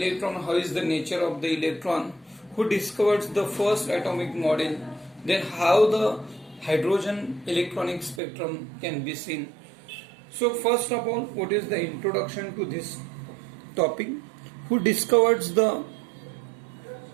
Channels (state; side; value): drops out; left; at 8.2 s